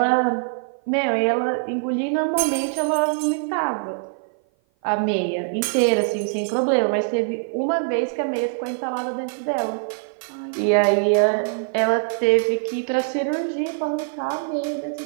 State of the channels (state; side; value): silent; left; 56 dB below the other